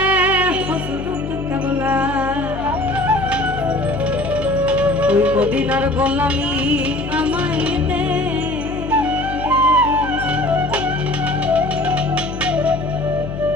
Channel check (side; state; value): left; noise; hum, 9 dB below the sound